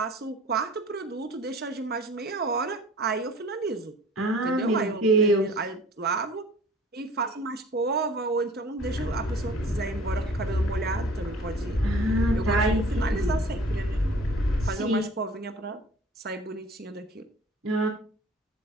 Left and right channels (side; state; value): both; normal; correlation 0.47